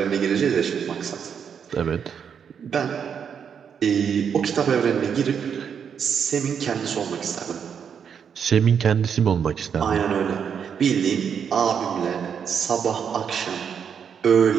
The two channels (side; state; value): left; quieter; 7.4 dB